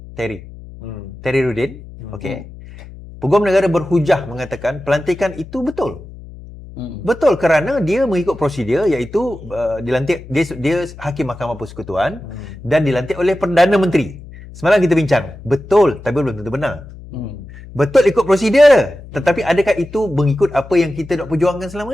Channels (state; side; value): noise; left; hum, 16 dB below the sound